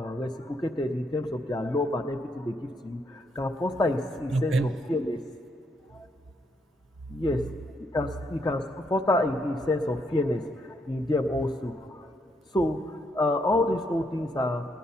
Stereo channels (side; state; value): both; normal; correlation 0.75